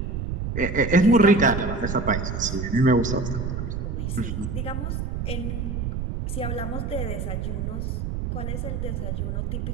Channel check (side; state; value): right; noise; rumble, 3 dB below the sound